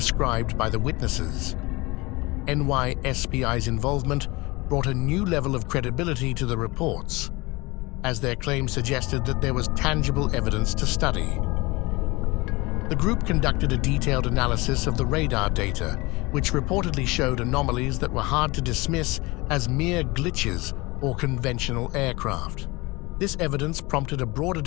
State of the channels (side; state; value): right; quieter; 23.6 dB